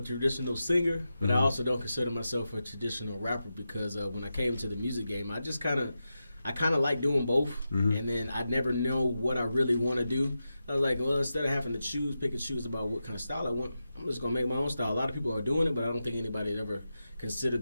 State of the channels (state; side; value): inverted; both; correlation -0.91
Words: traditional singer, but I also don't consider myself a traditional rapper because when I came to the music game, I kind of like doing both, and then I never know what I really want to do. I was like, well, instead of having to pick and choose about what kind of style I want, I'm just gonna make my own style. A lot of people are doing it, but I don't think anybody ever